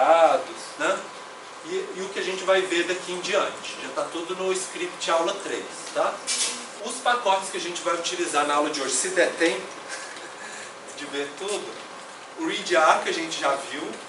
né? E o que a gente vai ver daqui em diante. Já está tudo no script aula 3, tá? Os pacotes que a gente vai utilizar na aula de hoje, se der tempo de ver tudo, o readr que a gente já viu,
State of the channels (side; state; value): both; identical; correlation 1.00